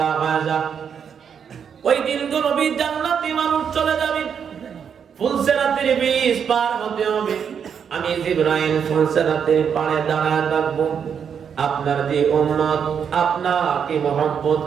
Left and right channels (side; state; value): left; quieter; 7.4 dB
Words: হয়ে যা। ওই দিন তো নবী জান্নাতি মানুষ চলে যাবে, ফুলসেরাতের বীজ পার হতে হবে। আমি জিবরাইল ফুলসেরাতের পাড়ে দাঁড়ায় থাকবো। আপনার যে উম্মত আপনাকে মহব্বত